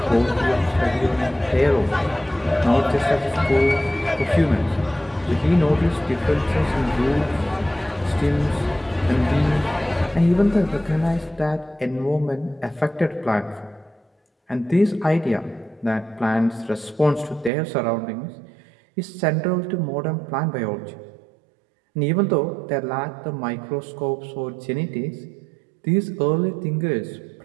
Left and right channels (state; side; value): drops out; left; at 17.5 s